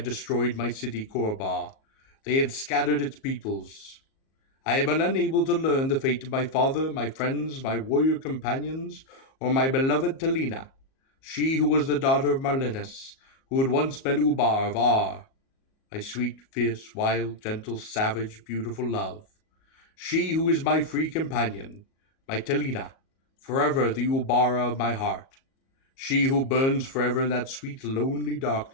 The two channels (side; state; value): right; late; 37 ms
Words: destroyed my city Korobar. They had scattered its peoples. I have been unable to learn the fate of my father, my friends, my warrior companions, or my beloved Talina, she who was the daughter of Marlinus, who had once been Ubar of Ar, my sweet, fierce, wild, gentle, savage, beautiful love. She who is my free companion, my Talina, forever the Ubara of my heart. She who burns forever in that sweet, lonely